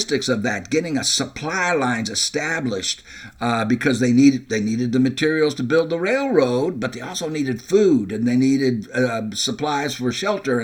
of that, getting a supply lines established, because they needed the materials to build the railroad, but they also needed food, and they needed supplies for shelter,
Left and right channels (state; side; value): identical; both; correlation 1.00